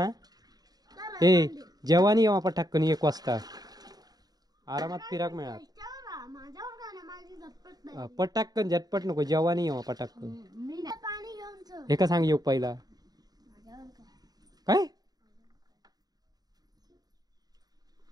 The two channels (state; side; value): late; left; 0.19 ms